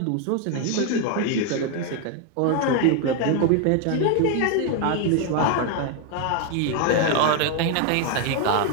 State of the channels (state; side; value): different; both; correlation 0.01